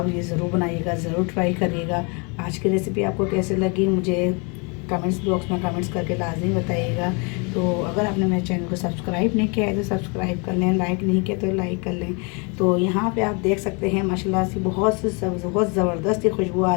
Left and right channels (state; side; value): quieter; right; 32.9 dB